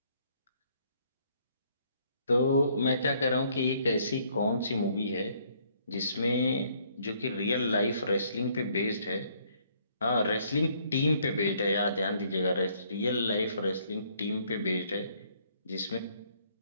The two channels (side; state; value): both; inverted; correlation -0.66